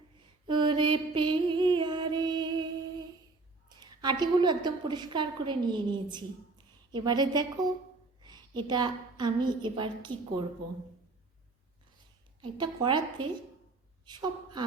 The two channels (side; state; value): left; quieter; 3.6 dB